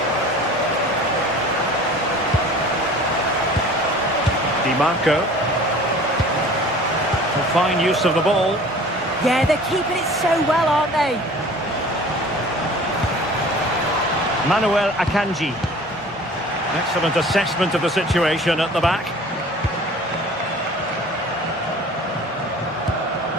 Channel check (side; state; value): both; normal; correlation 0.45